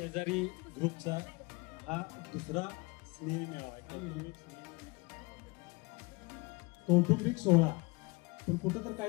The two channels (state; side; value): quieter; right; 26.1 dB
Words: ग्रुपचा हा दुसरा स्नेह मेळावा कौटुंबिक सोहळा. पण कुठं तर